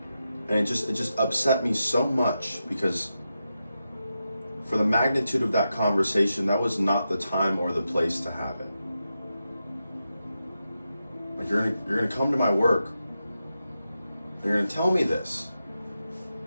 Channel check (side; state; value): both; inverted; correlation -0.88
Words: And it just upset me so much because for the magnitude of that conversation, that was not the time or the place to have it. Like you're gonna come to my work and you're gonna tell me this